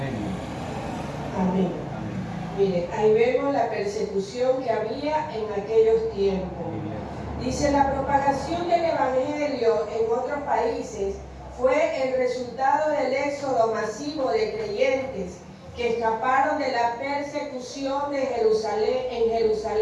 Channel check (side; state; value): both; identical; correlation 1.00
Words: Amén. Mire, ahí vemos la persecución que había en aquellos tiempos. Dice, la propagación del Evangelio en otros países fue el resultado del éxodo masivo de creyentes que escaparon de la persecución de en